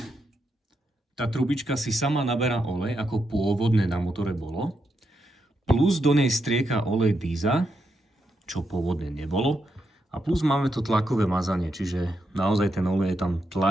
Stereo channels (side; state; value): both; normal; correlation 0.83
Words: tá trubička si sama naberá olej, ako pôvodne na motore bolo. Plus do nej strieka olej Díza, čo pôvodne nebolo. A plus máme to tlakové mazanie, čiže naozaj ten olej je tam